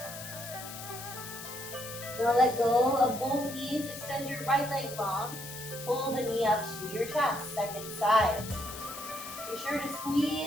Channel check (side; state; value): left; noise; hiss, 11 dB below the sound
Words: Now let go of both knees. Extend your right leg long. Pull the knee up to your chest. Second side. Be sure to